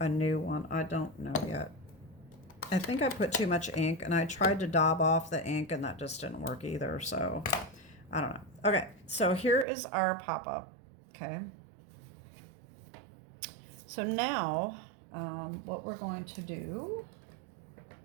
new one. I don't know yet. I think I put too much ink and I tried to daub off the ink and that just didn't work either, so I don't know. Okay, so here is our pop-up, okay? So now what we're going to do,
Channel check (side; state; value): left; drops out; at 9.7 s